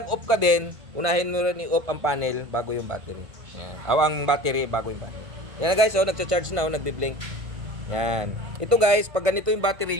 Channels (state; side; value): late; left; 1.5 ms